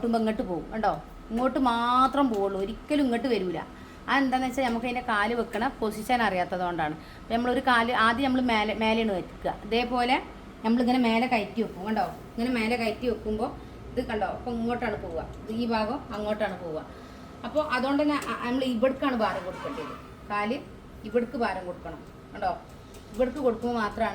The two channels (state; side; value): identical; both; correlation 1.00